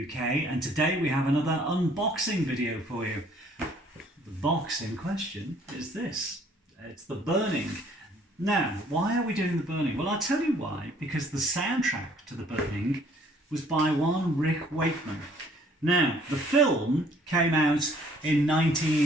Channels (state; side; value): normal; both; correlation 0.59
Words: UK, and today we have another unboxing video for you. The box in question is this. It's The Burning. Now, why are we doing The Burning? Well, I'll tell you why. Because the soundtrack to The Burning was by one Rick Wakeman. Now, the film came out in